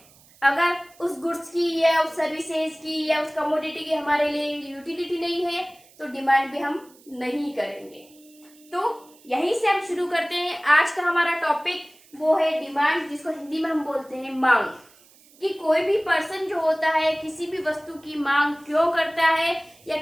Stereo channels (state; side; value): noise; right; hiss, 27 dB below the sound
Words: अगर उस गुड्स की या उस सर्विसेज की या उस कमोडिटी की हमारे लिए यूटिलिटी नहीं है तो डिमांड भी हम नहीं करेंगे। तो यहीं से हम शुरू करते हैं। आज का हमारा टॉपिक वो है डिमांड, जिसको हिंदी में हम बोलते हैं मांग। कि कोई भी पर्सन जो होता है किसी भी वस्तु की मांग क्यों करता है, या